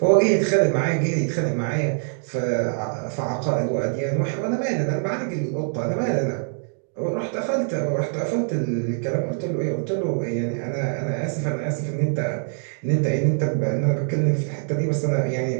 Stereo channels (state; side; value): silent; left; digital silence